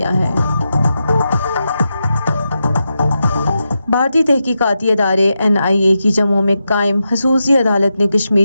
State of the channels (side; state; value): both; inverted; correlation -0.88